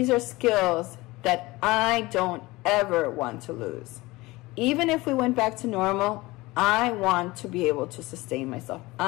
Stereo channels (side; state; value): right; quieter; 21.0 dB